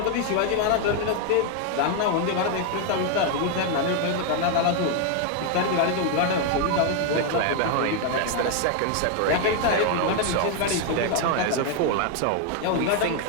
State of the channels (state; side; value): different; both; correlation 0.00